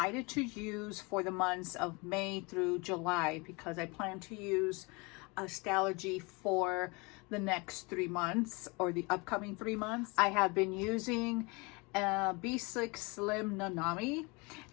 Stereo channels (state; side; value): quieter; right; 27.8 dB